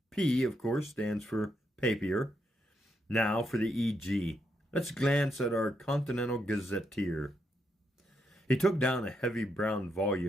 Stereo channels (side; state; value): both; normal; correlation 0.80